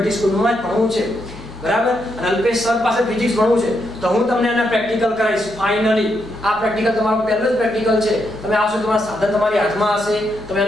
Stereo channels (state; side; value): normal; both; correlation 0.80